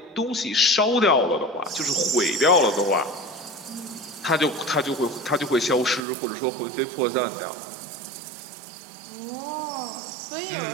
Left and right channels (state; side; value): drops out; left; at 6.0 s